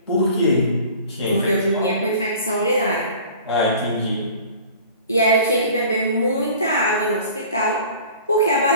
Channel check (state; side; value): inverted; both; correlation -0.45